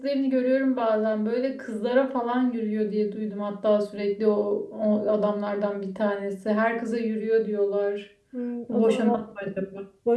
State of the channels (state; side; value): identical; both; correlation 1.00